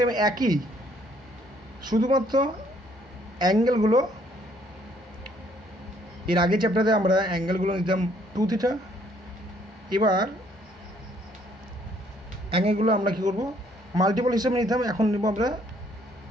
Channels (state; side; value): normal; both; correlation 0.64